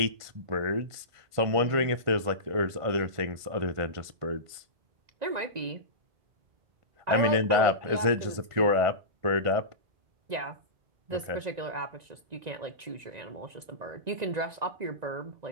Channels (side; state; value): left; late; 1.5 ms